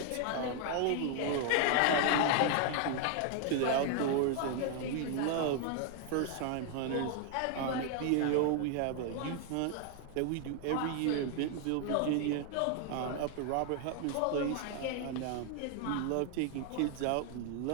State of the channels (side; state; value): both; different; correlation 0.00